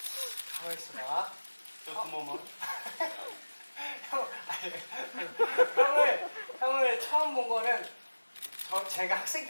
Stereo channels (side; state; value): both; inverted; correlation -1.00